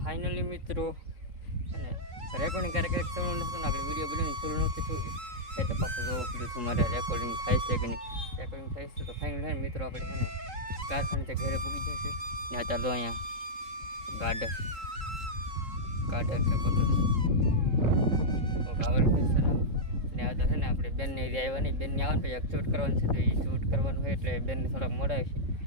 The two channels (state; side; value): late; left; 3.8 ms